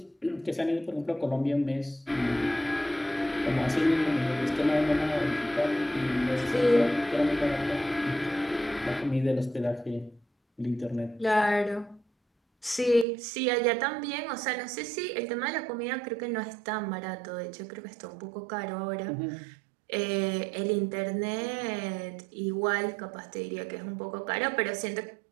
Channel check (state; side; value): drops out; left; at 13.1 s